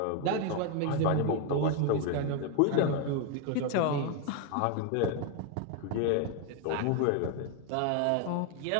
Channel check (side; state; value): both; different; correlation 0.01